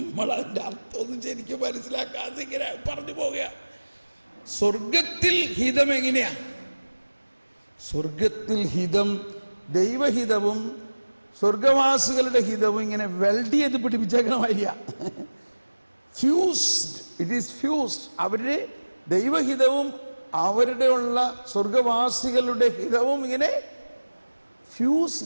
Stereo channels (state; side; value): inverted; both; correlation -1.00